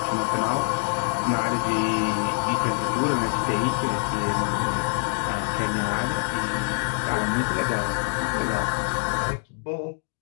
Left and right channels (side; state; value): right; silent; digital silence